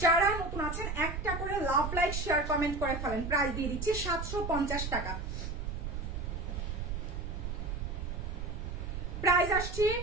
যারা নতুন আছেন একটা করে লাভ, লাইক, শেয়ার, কমেন্ট করে ফেলেন। প্রাইস দিয়ে দিচ্ছি 750 টাকা। প্রাইস আসছে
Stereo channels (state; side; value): noise; right; rumble, 4 dB below the sound